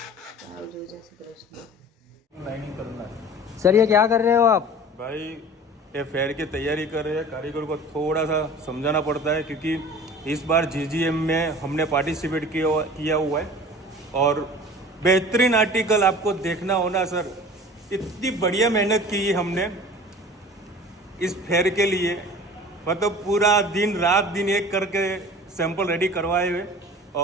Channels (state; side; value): normal; both; correlation 0.41